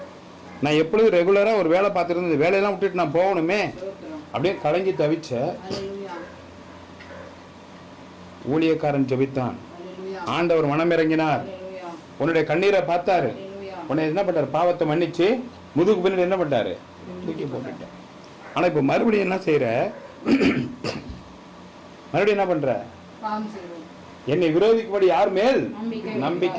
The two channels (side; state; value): both; identical; correlation 1.00